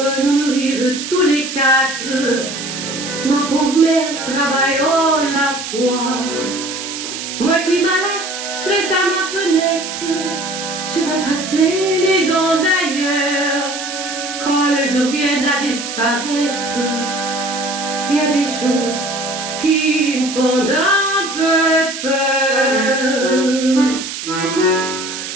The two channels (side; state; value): right; noise; hiss, 7 dB below the sound